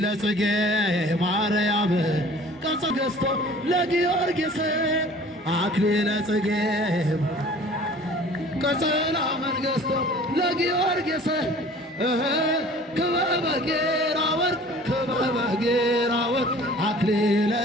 ጽጌ ማርያም ቀጸ ገዝቶ ለጊዮርጊስ አክሊለ ጽጌ ቀጸላ መንገሥቶ ለጊዮርጊስ ክበበ ጌራ ወርቅ ክበበ ጌራ ወርቅ አክሊለ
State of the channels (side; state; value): both; normal; correlation 0.48